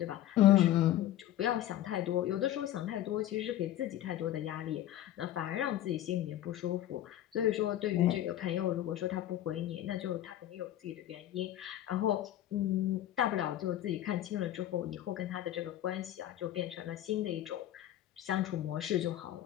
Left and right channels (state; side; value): quieter; right; 12.8 dB